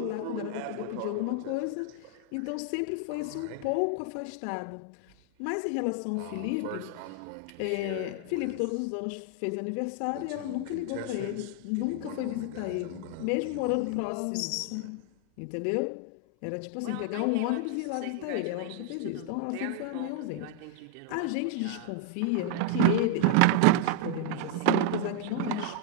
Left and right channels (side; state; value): both; different; correlation 0.00